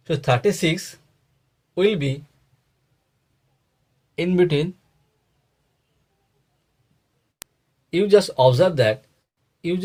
So 36 will be in between. You just observe that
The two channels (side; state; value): both; identical; correlation 1.00